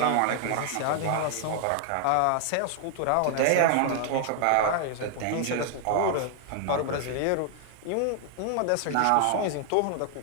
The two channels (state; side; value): different; both; correlation 0.00